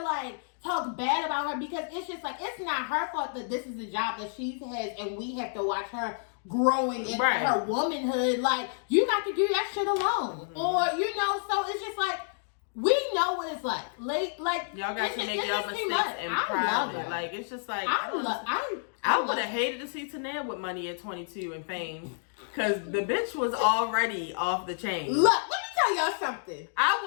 like talk bad about her, because it's just like, it's not her fault that this is the job that she has, and we have to watch her growing into her womanhood. Like, you got to do that shit alone. Or, you know, so it's just like, we know what it's like. Like y'all got to make y'all mistakes in private. Like, it's just like, I would have hated to see Tanea with money at 22 and fame, because the bitch was already off the chain. Look, let me tell y'all something. I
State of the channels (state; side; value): silent; right; digital silence